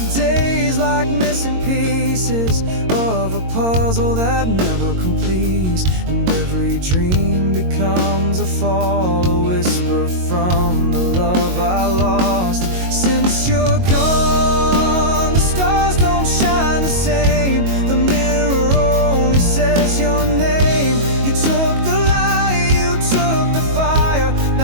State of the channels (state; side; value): late; left; 22 ms